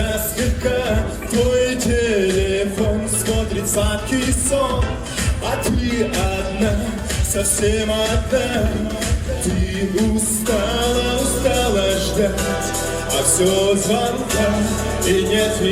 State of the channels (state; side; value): identical; both; correlation 1.00